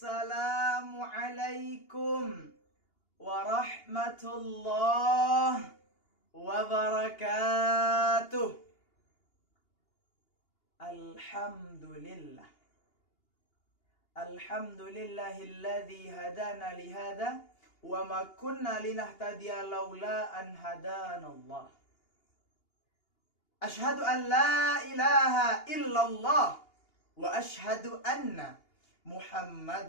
warahmatullahi wabarakatuh. Alhamdulillah. Alhamdulillahilladzi hadana lihada wa ma kunna linahtadiya laula an hadanallah. Ashhadu an la ilaha illallah wa ashhadu anna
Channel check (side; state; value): right; late; 2.8 ms